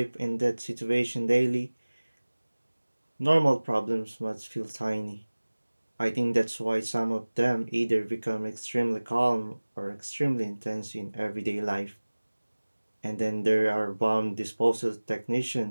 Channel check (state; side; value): inverted; both; correlation -1.00